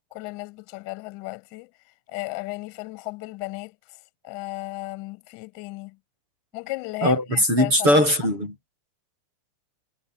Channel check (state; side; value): late; left; 7.0 ms